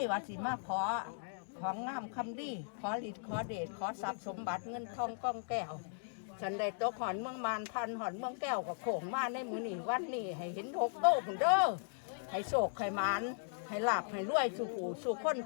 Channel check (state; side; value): silent; right; digital silence